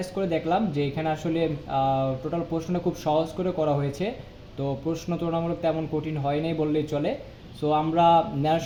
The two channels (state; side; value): identical; both; correlation 1.00